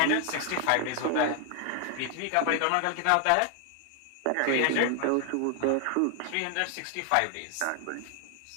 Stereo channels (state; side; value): different; both; correlation 0.00